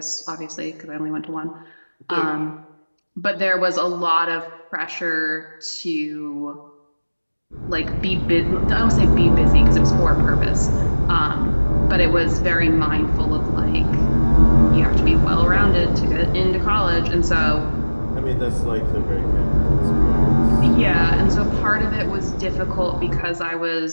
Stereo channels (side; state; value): both; inverted; correlation -1.00